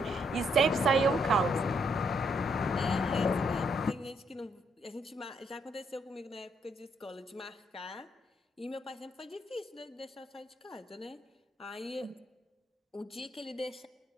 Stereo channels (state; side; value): normal; both; correlation 0.73